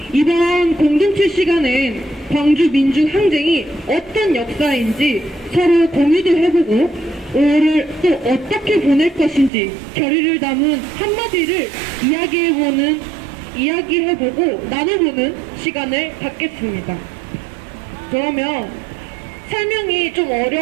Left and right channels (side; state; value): left; drops out; at 9.5 s